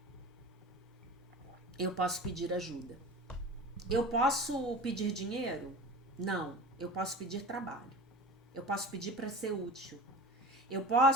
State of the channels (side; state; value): both; normal; correlation 0.34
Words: Eu posso pedir ajuda. Eu posso pedir dinheiro? Não. Eu posso pedir trabalho. Eu posso pedir para ser útil. Eu